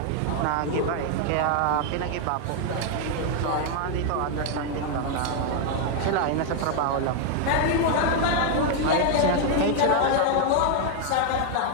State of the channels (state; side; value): different; both; correlation 0.00